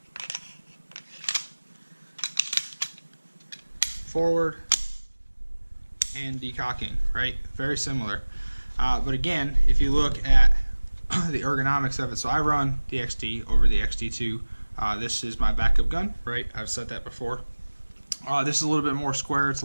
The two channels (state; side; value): inverted; both; correlation -1.00